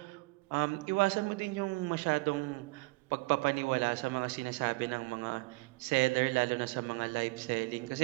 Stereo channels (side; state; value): left; quieter; 25.2 dB